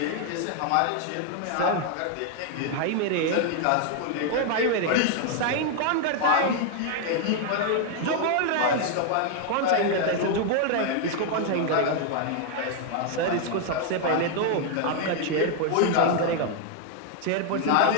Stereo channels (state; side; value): different; both; correlation 0.00